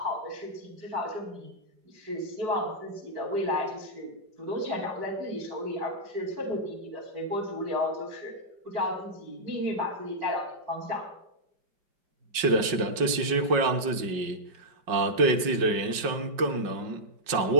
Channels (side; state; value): left; late; 5.4 ms